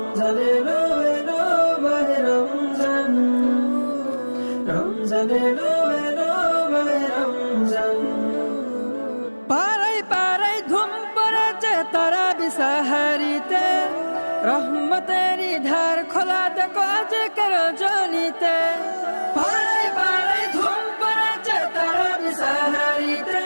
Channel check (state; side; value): inverted; both; correlation -1.00